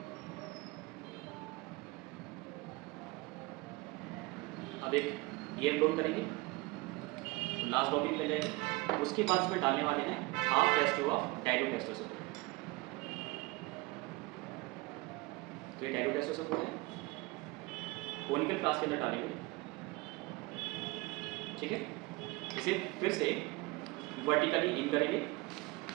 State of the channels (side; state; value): left; quieter; 23.2 dB